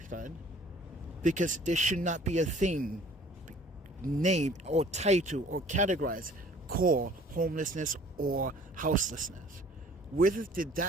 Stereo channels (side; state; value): both; normal; correlation 0.53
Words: friend. Because there should not be a thing named or title or categorized called homelessness or houselessness. Where did